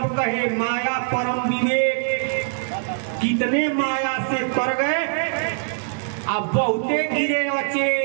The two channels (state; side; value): silent; left; digital silence